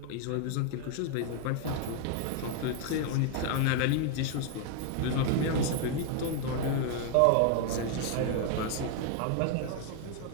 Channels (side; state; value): both; different; correlation 0.00